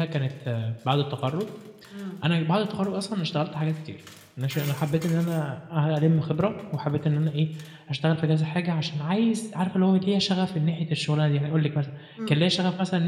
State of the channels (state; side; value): identical; both; correlation 1.00